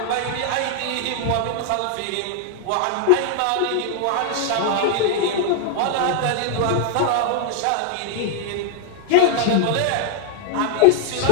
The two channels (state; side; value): different; both; correlation 0.00